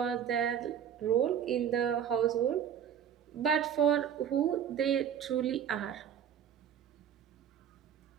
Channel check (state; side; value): quieter; left; 8.9 dB